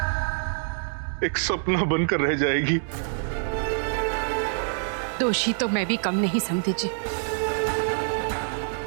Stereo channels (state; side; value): silent; left; digital silence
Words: एक सपना बनकर रह जाएगी। दोषी तो मैं भी कम नहीं समझी जी।